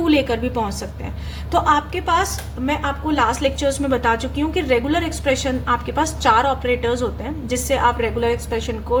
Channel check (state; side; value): identical; both; correlation 1.00